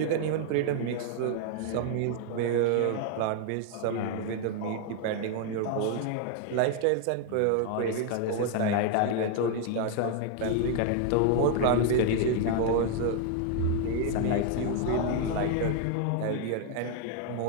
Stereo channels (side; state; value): both; different; correlation 0.00